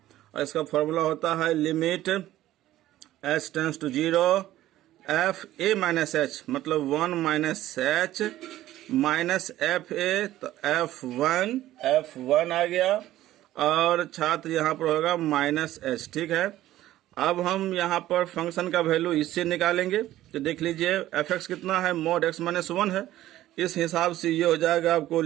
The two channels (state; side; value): quieter; left; 14.4 dB